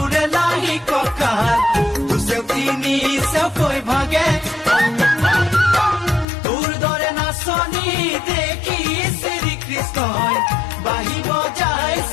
লাহি কঁকাল দুচেও তিনি চেওকৈ ভাগে তোৰ দৰে নাচনি দেখি শ্ৰীকৃষ্ণই বাঁহী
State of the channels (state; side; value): drops out; right; at 6.2 s